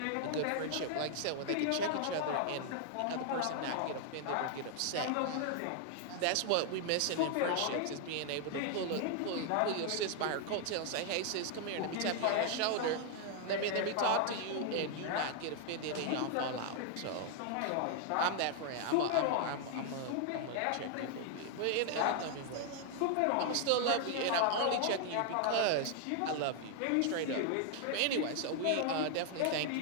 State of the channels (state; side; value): different; both; correlation 0.00